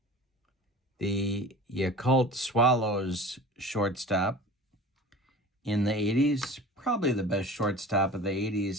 The Yakult Swallows shortstop in the 80s. Probably the best shortstop of the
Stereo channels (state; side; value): normal; both; correlation 0.39